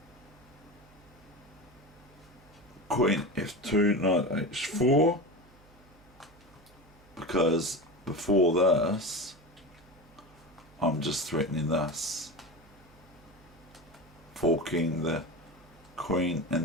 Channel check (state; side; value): noise; right; hum, 26 dB below the sound